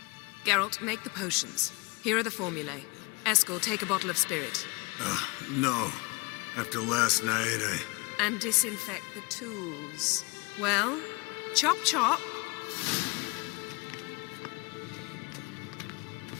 Geralt, make the potions. Here are the formulae. Eskel, take a bottle of spirit. No. After last night, And disinfect the tools. Well, chop chop.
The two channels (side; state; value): right; quieter; 27.5 dB